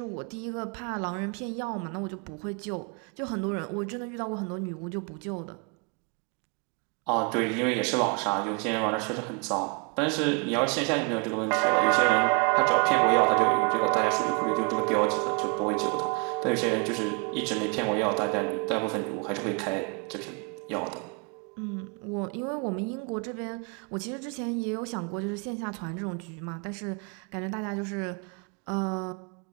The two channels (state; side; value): quieter; left; 34.8 dB